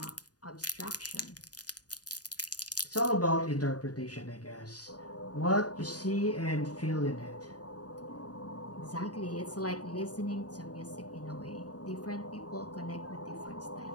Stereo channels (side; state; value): right; late; 0.68 ms